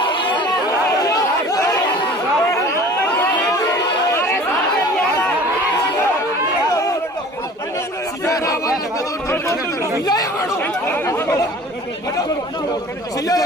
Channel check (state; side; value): normal; both; correlation 0.45